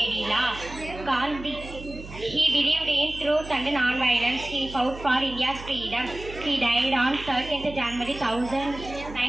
law. He believed in truth and non-violence. He fought for India's freedom. He died on 13th January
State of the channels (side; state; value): right; noise; hum, 14 dB below the sound